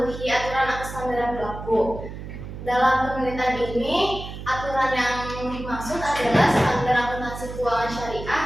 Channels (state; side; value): noise; right; hum, 10 dB below the sound